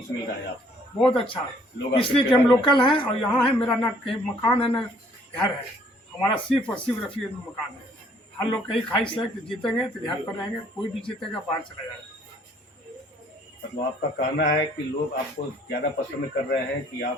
मिल रहा है आपको? बहुत अच्छा, लोग इसलिए कि हम लोकल हैं और यहाँ है। मेरा ना कहीं मकान है ना घर है, हमारा सिर्फ और सिर्फ रफी में मकान है। हर लोग कहीं ख्वाहिश है कि जीतेंगे तो घर पर रहेंगे, कोई भी जीतेगा बाहर चला जाएगा। मतलब आपका कहना है कि लोग आपको ज़्यादा पसंद कर रहे हैं कि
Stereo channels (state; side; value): normal; both; correlation 0.62